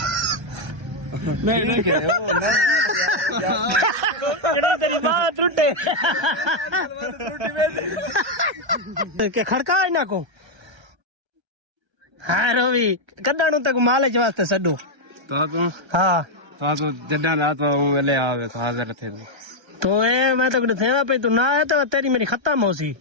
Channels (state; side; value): late; left; 1.3 ms